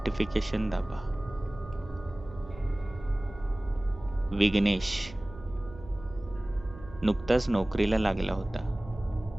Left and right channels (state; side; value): noise; right; hum, 17 dB below the sound